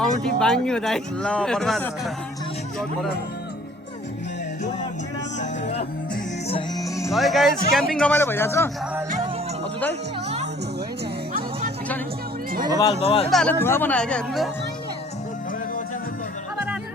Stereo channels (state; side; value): normal; both; correlation 0.55